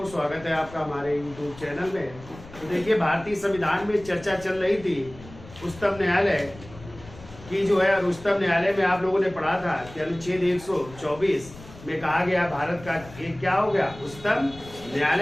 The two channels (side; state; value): left; noise; rumble, 18 dB below the sound